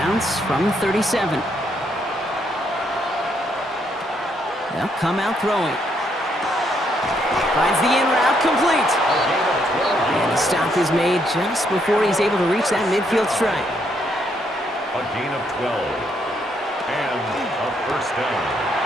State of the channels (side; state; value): both; normal; correlation 0.74